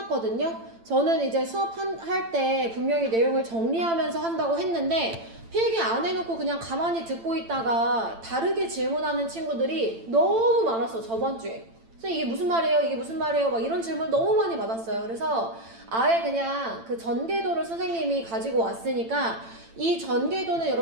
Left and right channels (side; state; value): left; late; 8.9 ms